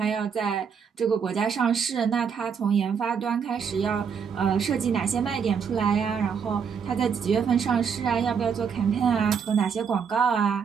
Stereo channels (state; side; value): quieter; left; 6.7 dB